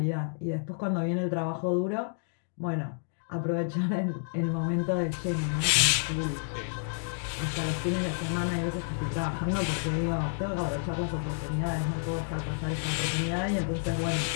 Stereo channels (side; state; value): right; silent; digital silence